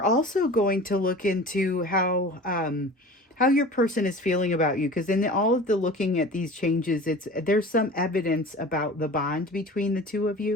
also going to look into how your person is feeling about you, because in all of the looking at these changes, there's some evidence about the bond between the two of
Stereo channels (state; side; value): normal; both; correlation 0.39